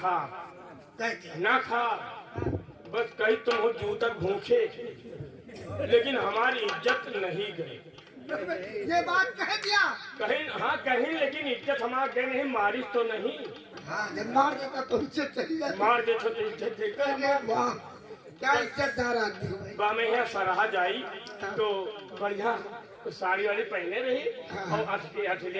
ना खा, बस कहीं तुम हो जू तक भूखे, लेकिन हमारी इज्जत नहीं गई। ये बात कह दिया? कहीं हाँ कहीं, लेकिन इज्जत हमारे गए नहीं, मारिश तो नहीं। हाँ जब मार देता तो इज्जत चली जाती। मार दे तो इज्जत देकर वाह क्या इज्जतदार आदमी हो। बा में यहाँ सराहा जाई तो बढ़िया साड़ी वाड़ी पहने रही और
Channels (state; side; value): identical; both; correlation 1.00